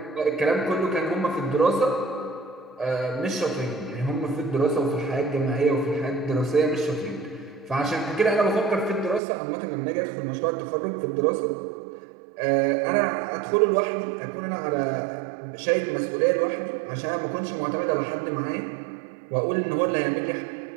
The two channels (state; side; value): drops out; left; at 9.2 s